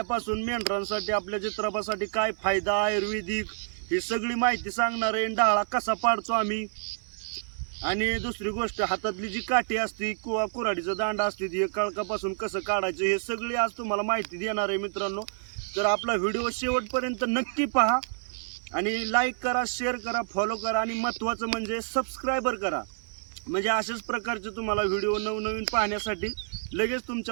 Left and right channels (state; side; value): silent; left; 59 dB below the other